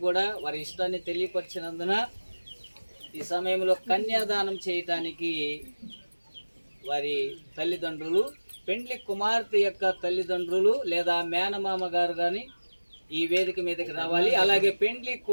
కూడా వారి ఇష్టాన్ని తెలియపరిచినందున ఈ సమయంలో కన్యాదానం చేయటానికి వారి తల్లిదండ్రులు, పెండ్లి కుమార్తె యొక్క తల్లిదండ్రులు లేదా మేనమామ గారు కానీ ఈ వేదిక మీదకి రావాలి. అలాగే పెండ్లి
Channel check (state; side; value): inverted; both; correlation -1.00